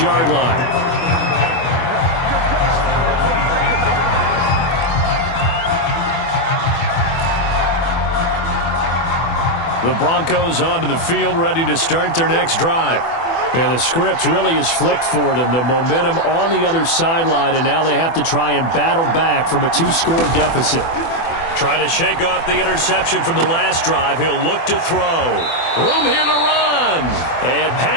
line. The Broncos onto the field, ready to start their next drive. And the script really is flipped for them. The momentum on the other sideline, and now they have to try and battle back from a 2-score deficit. Trying to shake off the interception from the last drive. He'll look to throw. Room here to run. And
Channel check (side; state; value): right; late; 24 ms